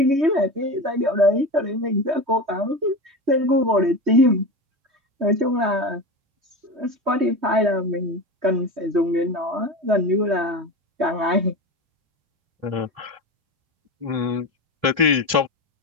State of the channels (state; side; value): late; left; 3.2 ms